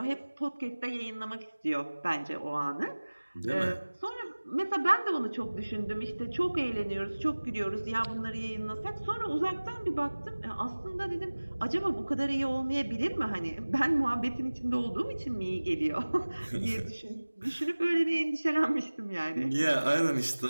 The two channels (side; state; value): both; inverted; correlation -1.00